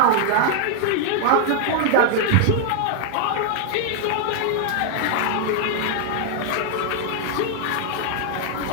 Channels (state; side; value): different; both; correlation -0.01